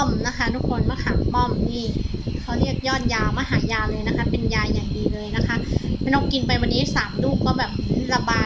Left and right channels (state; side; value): identical; both; correlation 1.00